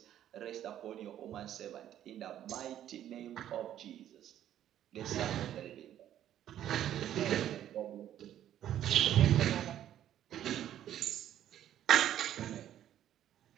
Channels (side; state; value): left; quieter; 11.3 dB